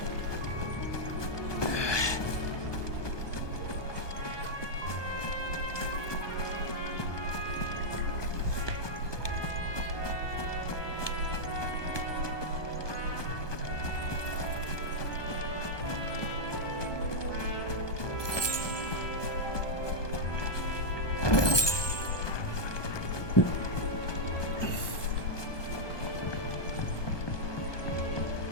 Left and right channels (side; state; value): right; late; 1.2 ms